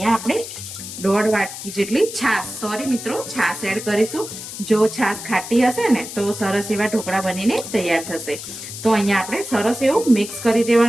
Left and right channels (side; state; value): left; noise; hiss, 10 dB below the sound